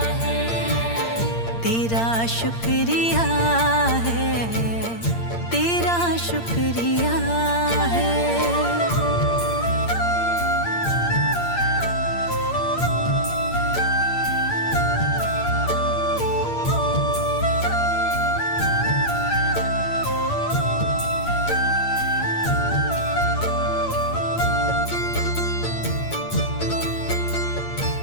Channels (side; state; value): right; late; 8.7 ms